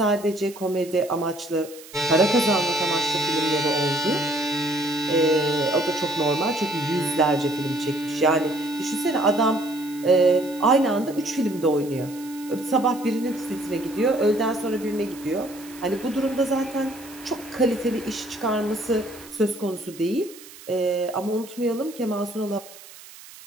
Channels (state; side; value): noise; right; hiss, 19 dB below the sound